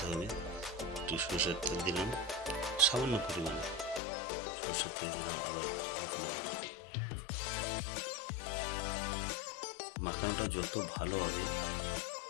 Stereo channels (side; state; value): right; drops out; at 4.0 s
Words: হবে। একটু সরষের তেল দিলাম সামান্য পরিমাণে, সরষের তেল দিলাম, আবার মেখে নেব। মাখানোটা যত ভালো হবে